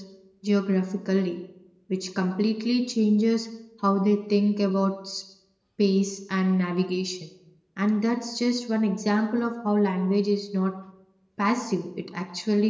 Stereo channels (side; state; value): both; identical; correlation 1.00